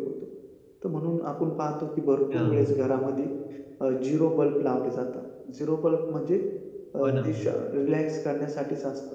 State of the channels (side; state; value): both; identical; correlation 1.00